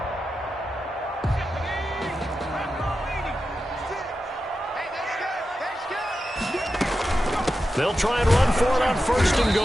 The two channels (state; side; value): normal; both; correlation 0.90